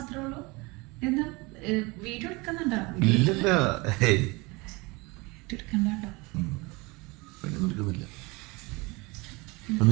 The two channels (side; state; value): left; quieter; 25.4 dB